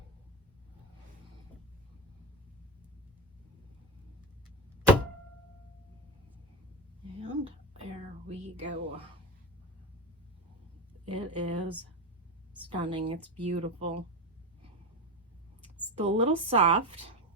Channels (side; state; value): both; normal; correlation 0.17